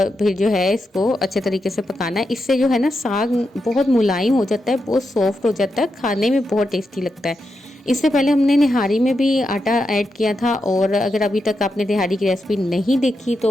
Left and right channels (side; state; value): both; normal; correlation 0.86